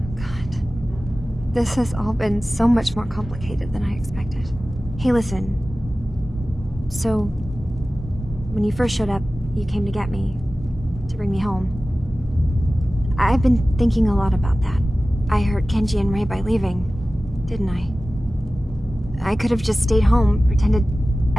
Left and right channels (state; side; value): normal; both; correlation 0.96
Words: This has all been so much more complicated than I expected. Hey, listen. So, When you first showed up, you came to get me, to bring me home. I've been thinking a lot about that. I hurt Kenji and Ray by leaving, didn't I? I could have just stayed home, pretended